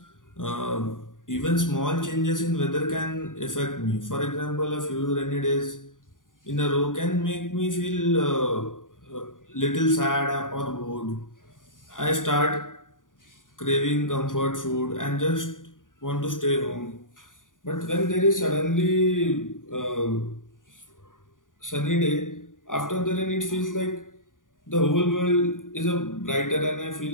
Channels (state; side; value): late; right; 0.88 ms